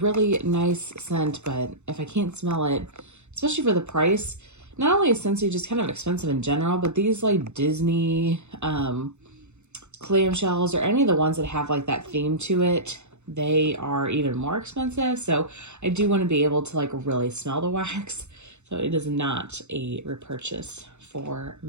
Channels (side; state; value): left; late; 0.83 ms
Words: nice scent, but if I can't smell it, especially for the price, not only is Scentsy just kind of expensive in general, but these like Disney clamshells or any of the ones that have like that theme to it, they are even more expensive. So I do want to be able to like really smell the wax. So it is not a repurchase for